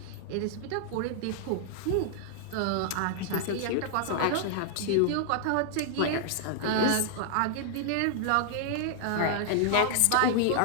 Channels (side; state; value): both; different; correlation 0.00